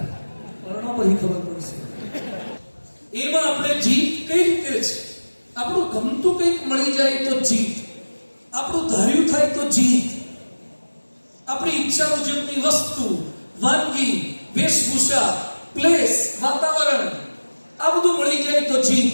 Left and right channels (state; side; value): inverted; both; correlation -1.00